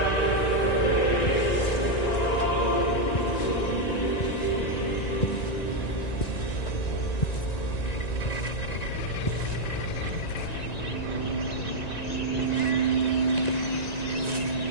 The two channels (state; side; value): late; right; 1.9 ms